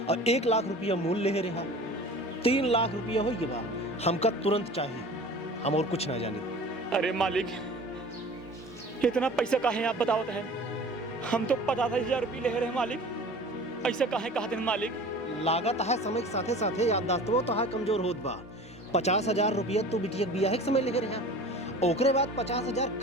और 1 लाख रुपया मूल ले रहा। 3 लाख रुपया हो बा, हमका तुरंत चाहिए, हम और कुछ ना जाने। अरे मालिक, इतना पैसा काहे आप बतावत हैं? हम तो 50,000 रुपये ले रहे हैं मालिक। ऐसा काहे कहते हैं मालिक? लागत है समय के साथे साथे याददाश्तवो तो है कमजोर होत बा। 50,000 रुपया तू बिटिया बिया के समय ले रहा, ओकरे बाद 50,000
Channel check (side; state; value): both; normal; correlation 0.41